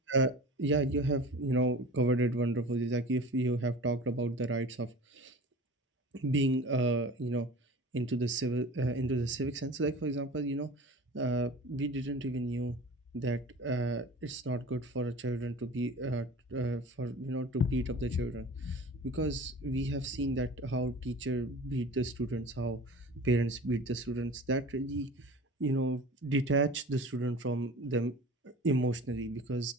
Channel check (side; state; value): both; normal; correlation 0.39